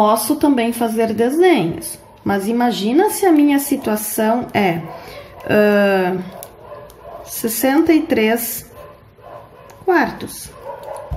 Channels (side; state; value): both; identical; correlation 1.00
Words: também fazer desenhos, mas imagina se a minha situação é 63 quartos.